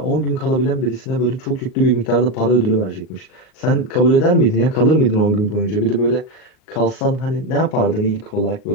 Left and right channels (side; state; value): right; late; 38 ms